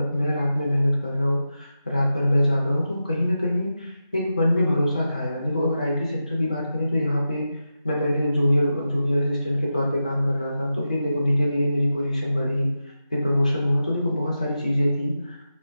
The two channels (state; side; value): inverted; both; correlation -0.90